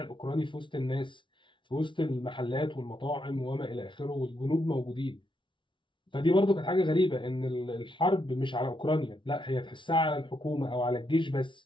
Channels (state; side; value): late; right; 0.24 ms